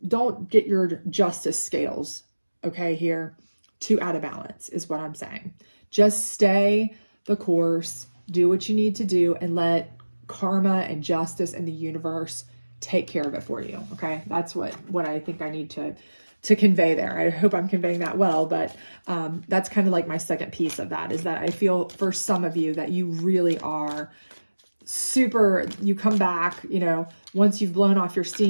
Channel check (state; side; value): inverted; both; correlation -1.00